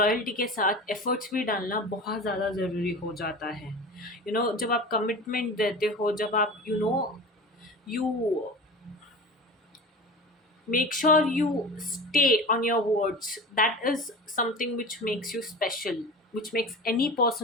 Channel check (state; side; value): normal; both; correlation 0.33